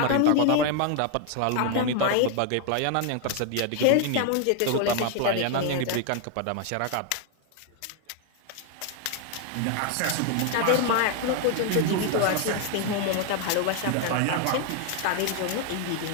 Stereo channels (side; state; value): both; different; correlation 0.01